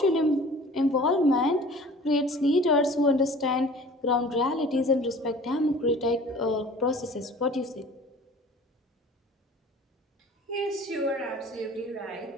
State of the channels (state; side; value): normal; both; correlation 0.46